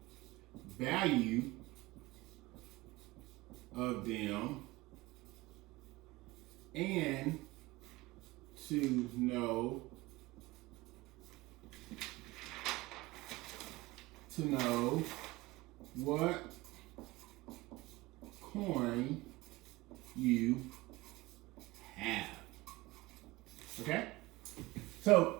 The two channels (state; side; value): quieter; left; 20.7 dB